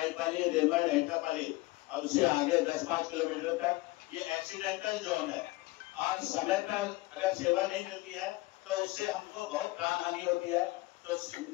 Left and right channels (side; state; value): right; quieter; 21.2 dB